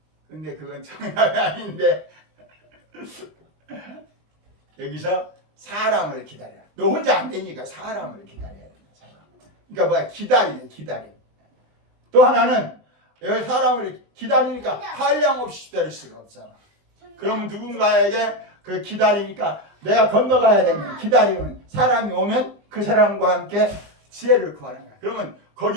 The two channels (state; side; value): late; left; 20 ms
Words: 근데 그건 정답이 아닌데 여기서 사람을 기다려. 너 혼자 안 되니까 사람을 기다려야 된다. 그러니까 뭐야? 기다림. 또 하나는 여기 사람을 기다리니까 한량없이 기다릴 수가 없잖아. 그러면 누군가에게 그 기다리니까 내가 건너가야 되면 기다리면 사람이 오면 그 사람과 함께 지혜를 구하는 거야. 그러면